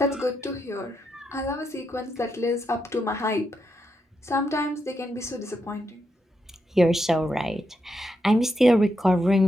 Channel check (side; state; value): both; normal; correlation 0.83